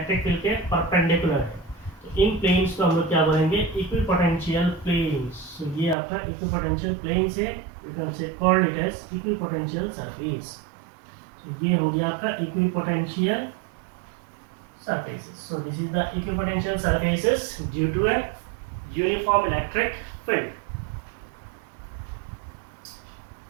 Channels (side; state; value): left; drops out; at 6.0 s